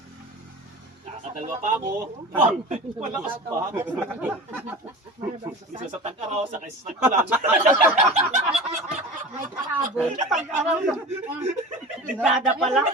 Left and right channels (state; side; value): normal; both; correlation 0.34